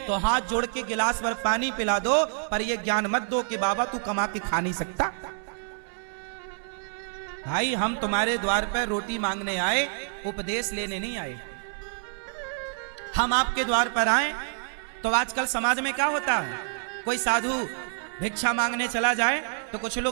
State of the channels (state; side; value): silent; left; digital silence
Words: तो हाथ जोड़ के गिलास भर पानी पिला दो, पर यह ज्ञान मत दो कि बाबा तू कमा के खा नहीं सकता। भाई हम तुम्हारे द्वार पर रोटी मांगने आए, उपदेश लेने नहीं आए। हम आपके द्वार पर आए तो आजकल समाज में क्या होता है, कोई साधु भिक्षा मांगने चला जाए तो कुछ